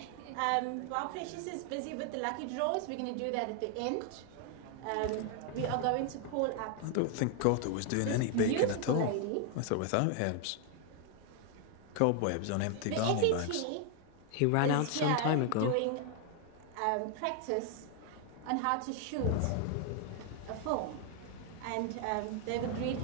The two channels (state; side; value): different; both; correlation 0.00